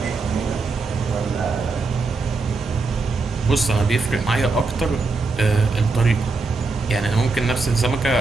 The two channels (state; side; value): quieter; left; 3.9 dB